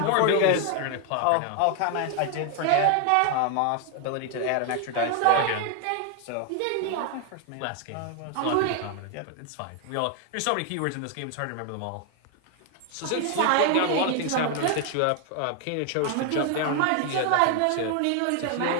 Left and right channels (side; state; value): both; different; correlation 0.01